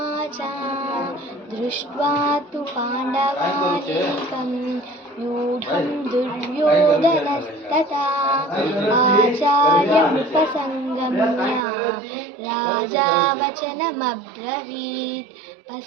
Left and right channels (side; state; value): left; drops out; at 11.6 s